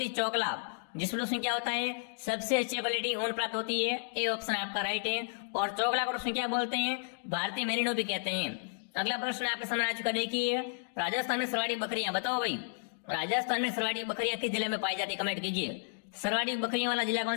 है चौकला, जिसमें दोस्तों क्या होता है सबसे अच्छी क्वालिटी ऊन प्राप्त होती है। ए ऑप्शन आपका राइट है। और चौकला को दोस्तों क्या बोलते हैं, भारतीय मेरिनो भी कहते हैं। अगला प्रश्न आपके सामने आ चुका, देखिए राजस्थान में सरवाड़ी बकरियां, बताओ भाई राजस्थान में सरवाड़ी बकरियां किस जिले में पाई जाती है, कमेंट कीजिए। सरवाड़ी बकरियों वाला जिला कौन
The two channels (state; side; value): silent; right; digital silence